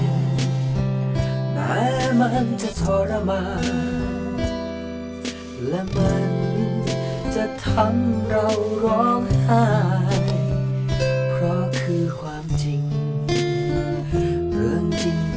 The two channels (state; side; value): identical; both; correlation 1.00